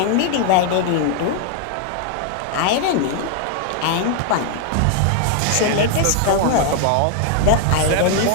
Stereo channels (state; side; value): different; both; correlation 0.00